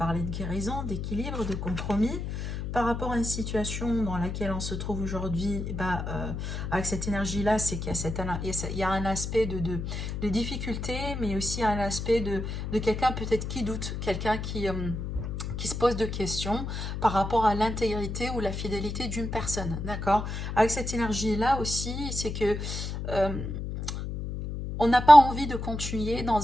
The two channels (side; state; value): left; noise; hum, 5 dB below the sound